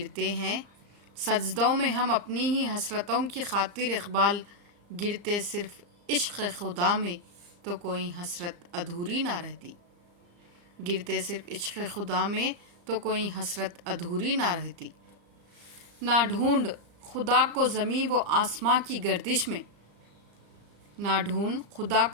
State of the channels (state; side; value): late; left; 34 ms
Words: ہیں سجدوں میں ہم اپنی ہی حسرتوں کی خاطر اقبال۔ گرتے صرف عشق خدا میں تو کوئی حسرت ادھوری نہ رہتی۔ گرتے صرف عشق خدا میں تو کوئی حسرت ادھوری نہ رہتی۔ نہ ڈھونڈ خدا کو زمین و آسمان کی گردش میں، نہ ڈھونڈ خدا